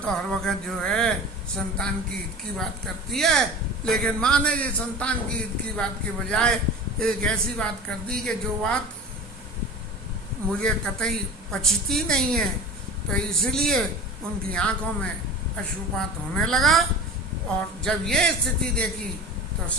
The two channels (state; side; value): normal; both; correlation 0.35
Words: हर वक्त जो है संतान की हित की बात करती है, लेकिन माँ ने ये संतान की हित की बात के बजाय एक ऐसी बात कर दी कि जो बात मुझे कतई पचती नहीं है। तो इसलिए उनकी आंखों में अश्रुपात होने लगा, और जब ये स्थिति देखी तो